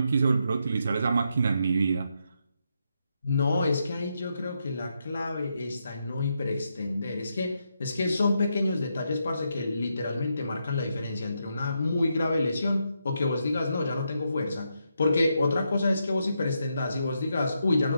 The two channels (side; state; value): both; inverted; correlation -0.81